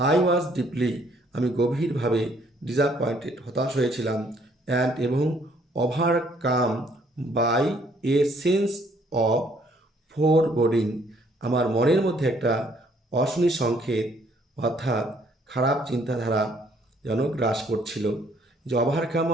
আই ওয়াজ ডিপলি আমি গভীরভাবে ডিসঅ্যাপয়েন্টেড হতাশ হয়েছিলাম, অ্যান্ড এবং overcome by a sense of foreboding আমার মনের মধ্যে একটা অশনি সংকেত অর্থাৎ খারাপ চিন্তাধারা যেন গ্রাস করছিল। যে ওভারকাম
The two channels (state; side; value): normal; both; correlation 0.64